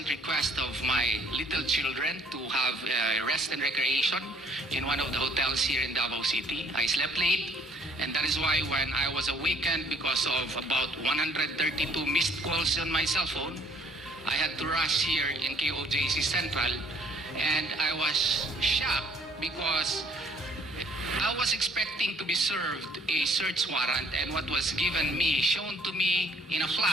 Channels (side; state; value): both; normal; correlation 0.61